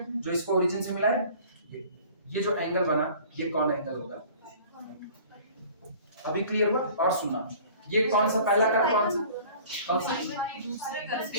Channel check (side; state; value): both; inverted; correlation -0.47